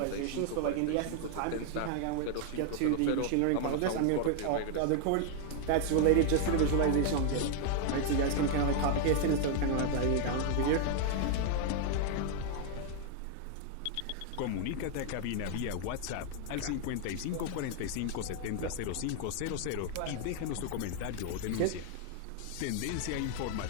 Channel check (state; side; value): different; both; correlation 0.00